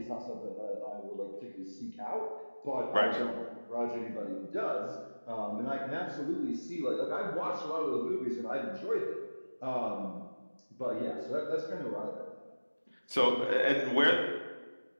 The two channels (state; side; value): inverted; both; correlation -1.00